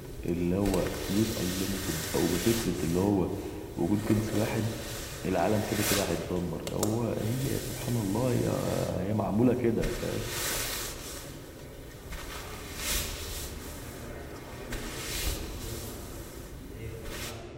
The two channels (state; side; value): identical; both; correlation 1.00